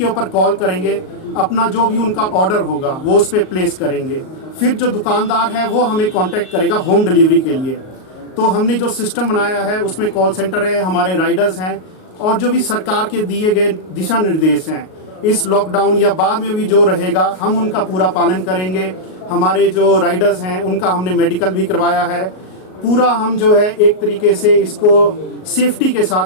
ऊपर कॉल करेंगे, अपना जो भी उनका ऑर्डर होगा वो उस पर प्लेस करेंगे। फिर जो दुकानदार है वो हमें कांटेक्ट करेगा होम डिलीवरी के लिए। तो हमने जो सिस्टम बनाया है उसमें कॉल सेंटर है, हमारे राइडर्स हैं और जो भी सरकार के दिए गए दिशा निर्देश हैं इस लॉकडाउन या बाद में भी जो रहेगा हम उनका पूरा पालन करेंगे। हमारे जो राइडर्स हैं उनका हमने मेडिकल भी करवाया है। पूरा हम जो है एक तरीके से इसको सेफ्टी के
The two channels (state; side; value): late; right; 38 ms